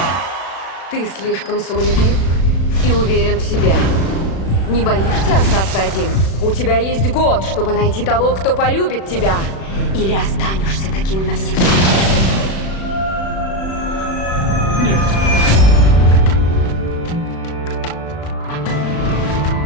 Ты слишком самолюбив и уверен в себе. Не боишься остаться один? У тебя есть год, чтобы найти того, кто полюбит тебя. Или останешься таким навсегда. Нет.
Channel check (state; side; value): late; right; 36 ms